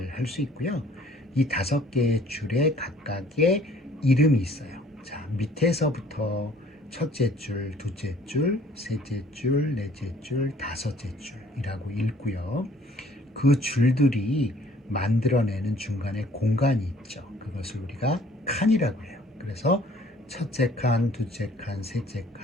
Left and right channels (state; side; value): normal; both; correlation 0.56